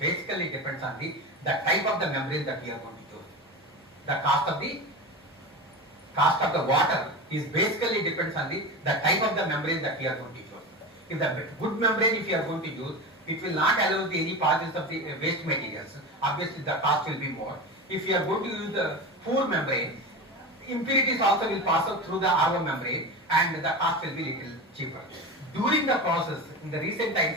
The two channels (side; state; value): both; normal; correlation 0.25